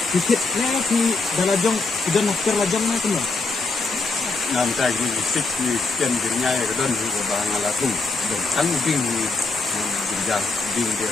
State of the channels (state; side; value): quieter; right; 3.8 dB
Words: sikit ni di dalajong sudah nakter lajong na kuno nam tai ni sikit chicken girnya ya kedon ni bang alatung dan sang ding ni girjang ding